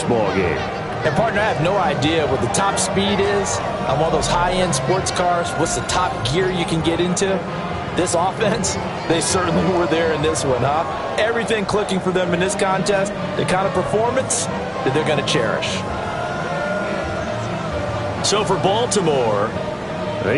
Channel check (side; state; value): both; identical; correlation 1.00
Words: ball game. And partner, I have no idea what the top speed is on one of those high-end sports cars. What's the top gear you can get into? This offense, they certainly were there in this one, huh? Everything clicking for them in this contest, the kind of performance that they're going to cherish. So for Baltimore,